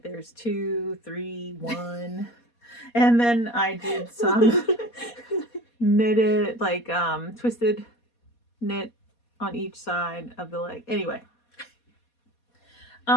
there's 2, 3, 1. And then I did some knitted, like, twisted knit on each side of the leg. Anyway.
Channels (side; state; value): right; late; 4.2 ms